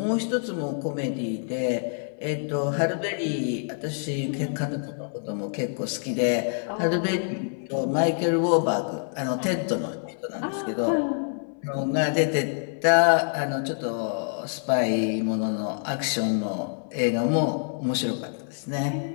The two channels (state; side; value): silent; right; 60 dB below the other